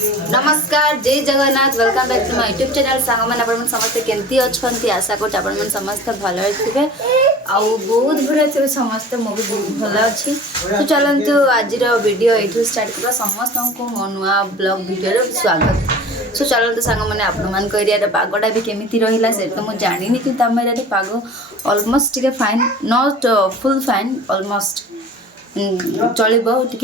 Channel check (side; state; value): both; normal; correlation 0.41